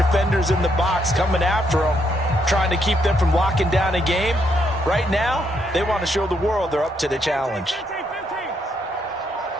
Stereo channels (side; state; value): both; normal; correlation 0.75